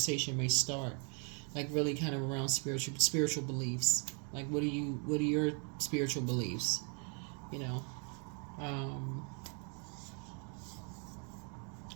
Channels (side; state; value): left; quieter; 38.2 dB